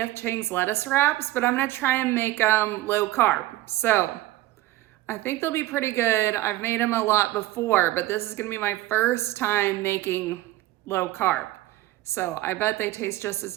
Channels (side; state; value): left; quieter; 16.5 dB